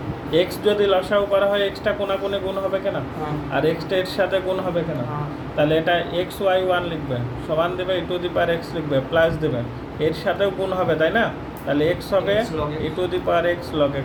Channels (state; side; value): identical; both; correlation 1.00